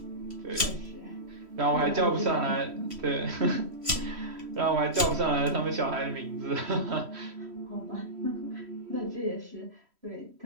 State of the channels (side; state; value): left; late; 3.1 ms